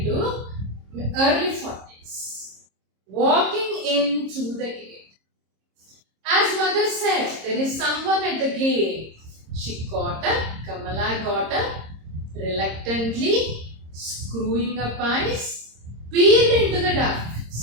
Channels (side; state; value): left; late; 26 ms